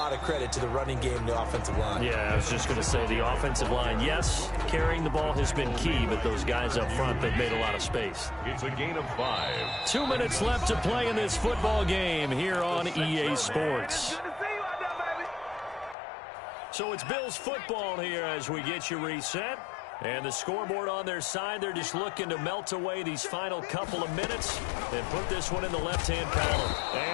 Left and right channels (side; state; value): right; drops out; at 16.0 s